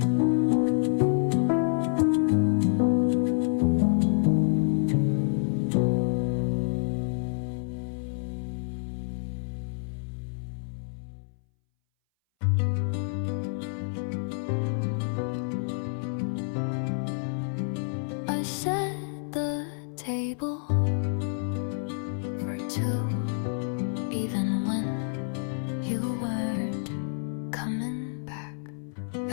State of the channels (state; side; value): silent; right; 59 dB below the other